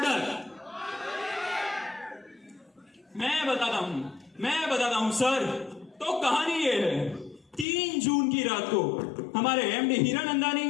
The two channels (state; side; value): drops out; right; at 7.7 s